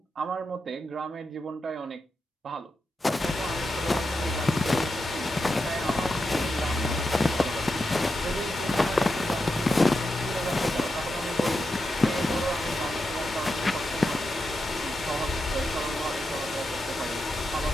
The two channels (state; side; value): normal; both; correlation 0.88